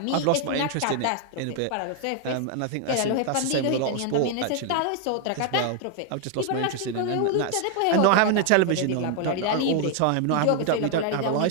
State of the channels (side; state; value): both; different; correlation 0.00